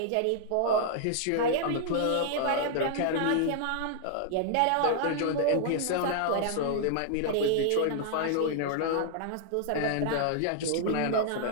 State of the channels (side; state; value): both; different; correlation -0.01